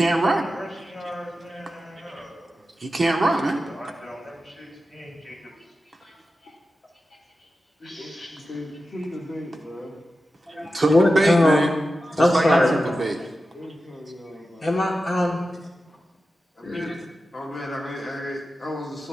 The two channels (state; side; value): normal; both; correlation 0.92